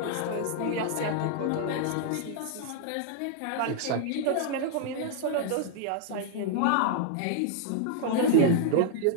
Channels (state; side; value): different; both; correlation -0.01